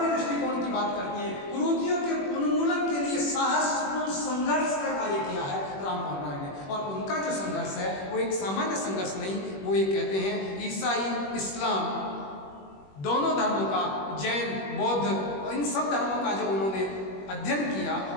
दृष्टिकोण की बात करते हैं। कुरीतियों के उन्मूलन के लिए साहसपूर्ण संघर्ष का कार्य किया है राममोहन राय ने, और उनका जो संघर्ष है वो एक सामान्य संघर्ष नहीं, वो ये कहते हैं ईसाई, इस्लाम दोनों धर्मों का, जैन, बौद्ध और इन सब धर्मों का जो उन्होंने अध्ययन किया,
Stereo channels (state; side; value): late; right; 21 ms